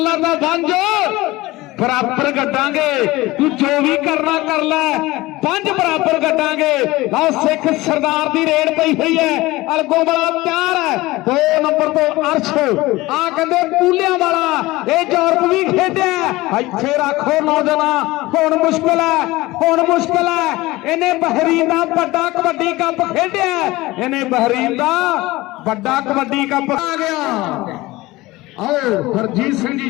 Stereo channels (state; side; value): quieter; right; 19.6 dB